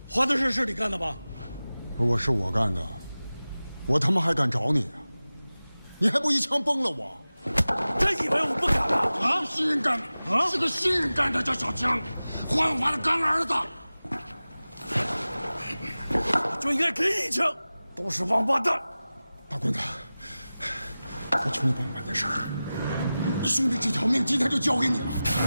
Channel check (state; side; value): inverted; both; correlation -0.97